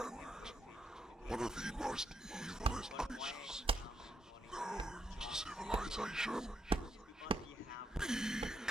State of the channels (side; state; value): both; normal; correlation 0.77